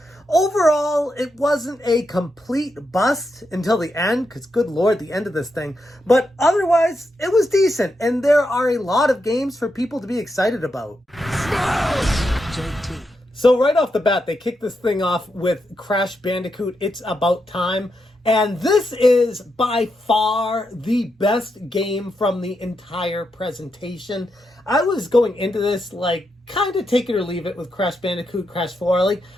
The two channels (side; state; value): both; normal; correlation 0.84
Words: Overall, it wasn't a complete bust until the end, because good lord, the end of this thing. But otherwise, it was decent, and there are a lot of games for people to be excited about. JT. So right off the bat, they kicked this thing off with Crash Bandicoot, It's About Time. And this is by far the best game from the entire presentation. I was going into this like kind of take it or leave it with Crash Bandicoot, Crash 4. Like,